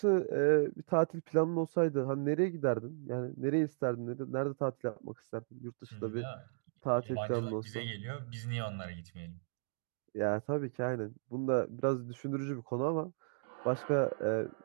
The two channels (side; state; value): left; silent; digital silence